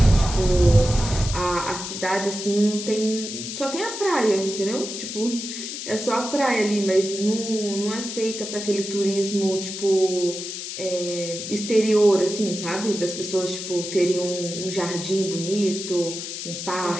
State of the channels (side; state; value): left; noise; hiss, 7 dB below the sound